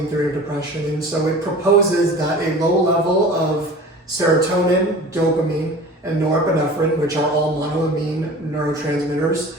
theory of depression. And so it proposes that a low level of serotonin, dopamine, and norepinephrine, which are all monoamine neurotransmitters,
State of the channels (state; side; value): normal; both; correlation 0.40